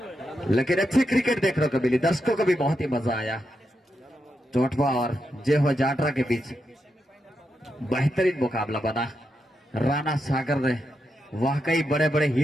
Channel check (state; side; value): normal; both; correlation 0.85